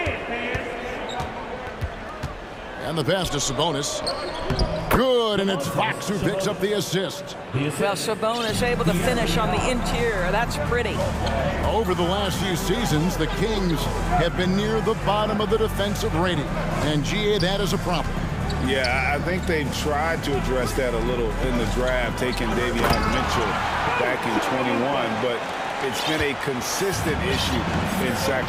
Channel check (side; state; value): both; identical; correlation 1.00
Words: And the pass to Sabonis. Good, and it's Fox who picks up the assist. Well, Sabonis able to finish on the interior. That's pretty. Over the last few seasons, the Kings have been near the bottom of the defensive rating. And GA, that is a problem. Yeah, I think they've tried to address that a little in the draft, taking Davion Mitchell back in 21, but it's been a consistent issue in